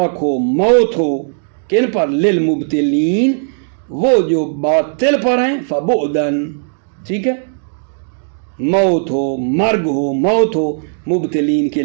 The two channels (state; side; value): silent; left; 69 dB below the other